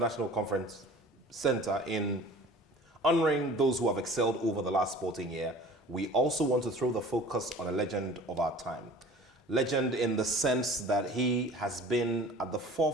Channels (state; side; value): normal; both; correlation 0.44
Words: Conference Center in honoring those who have excelled over the last sporting year, we also want to throw the focus on a legend of our time. Legend in the sense that he has been at the